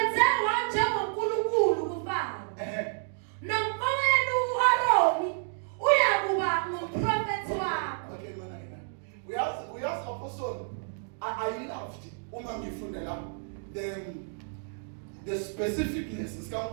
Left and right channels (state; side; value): silent; left; digital silence